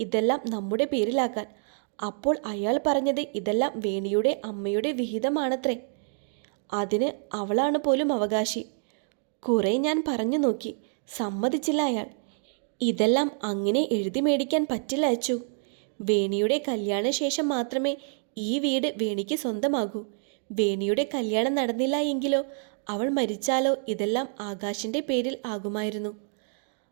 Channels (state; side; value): silent; left; 60 dB below the other